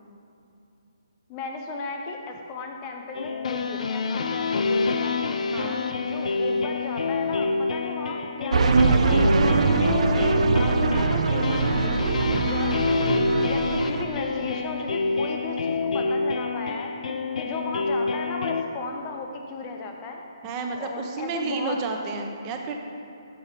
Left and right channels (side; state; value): both; inverted; correlation -0.72